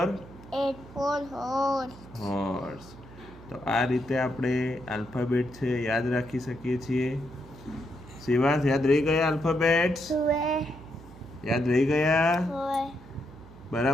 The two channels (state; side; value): noise; right; hum, 19 dB below the sound